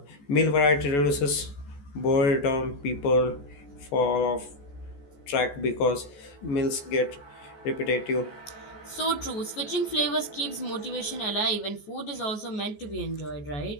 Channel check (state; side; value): late; right; 14 ms